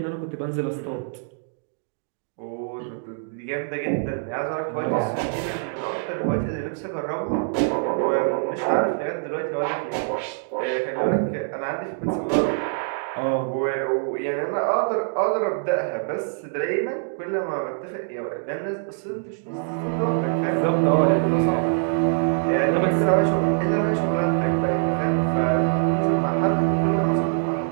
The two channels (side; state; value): left; silent; digital silence